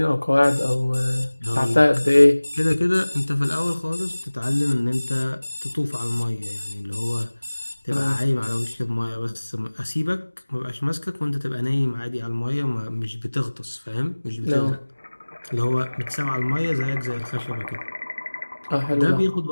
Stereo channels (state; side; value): inverted; both; correlation -1.00